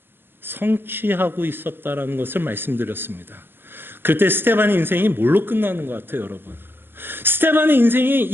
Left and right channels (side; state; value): left; late; 0.10 ms